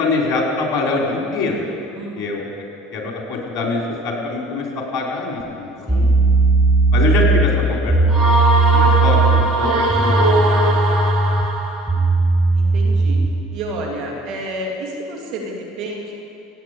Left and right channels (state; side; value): normal; both; correlation 0.51